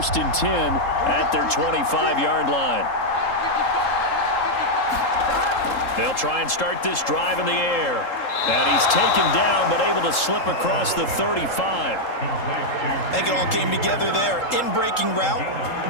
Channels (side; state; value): right; late; 3.7 ms